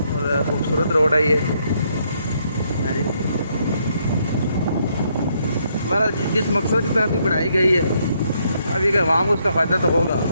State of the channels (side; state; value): both; inverted; correlation -0.73